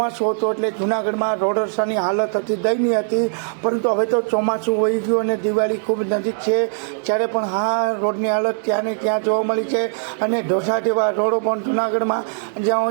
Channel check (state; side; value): silent; left; 65 dB below the other